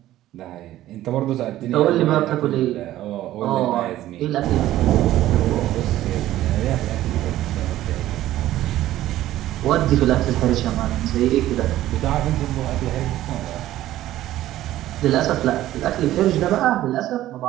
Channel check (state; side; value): quieter; left; 14.2 dB